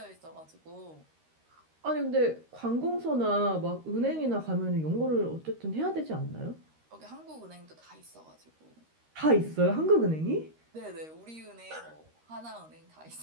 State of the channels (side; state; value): left; late; 13 ms